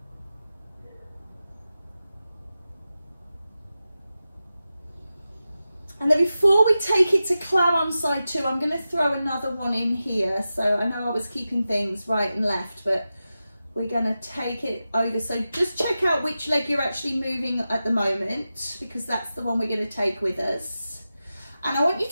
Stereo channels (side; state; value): both; inverted; correlation -0.93